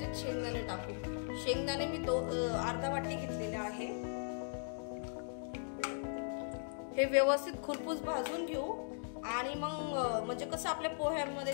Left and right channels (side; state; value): right; silent; digital silence